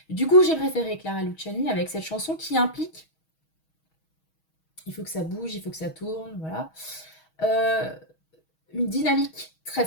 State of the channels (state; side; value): late; right; 6.3 ms